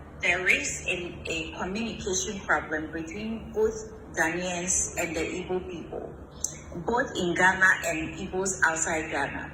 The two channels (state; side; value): identical; both; correlation 1.00